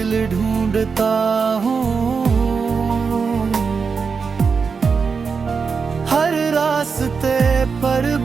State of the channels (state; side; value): quieter; left; 5.4 dB